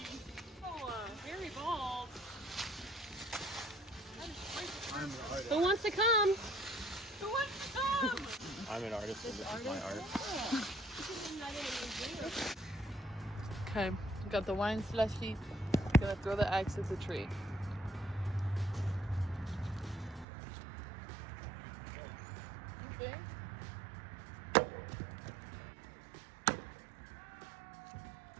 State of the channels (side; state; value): left; drops out; at 20.2 s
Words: Oh, very bald. I'm an artist. Who wants to come? Who wants to come? I'm an artist, and this is my art. Okay, got the wine slushy. Gonna throw the axe at the tree. Okay.